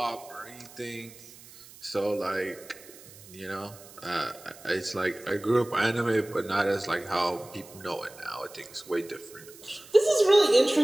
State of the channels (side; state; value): right; noise; hiss, 20 dB below the sound